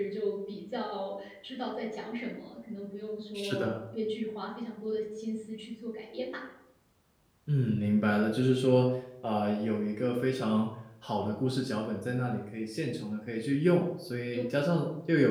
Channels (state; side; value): identical; both; correlation 1.00